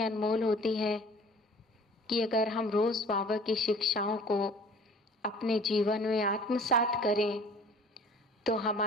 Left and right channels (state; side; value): normal; both; correlation 0.49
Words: अनमोल होती है कि अगर हम रोज बाबा की शिक्षाओं को अपने जीवन में आत्मसात करें तो